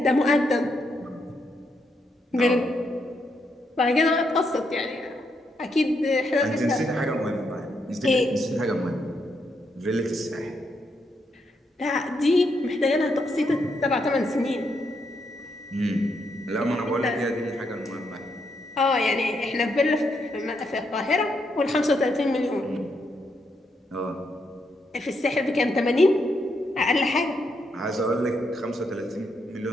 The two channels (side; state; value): both; normal; correlation 0.79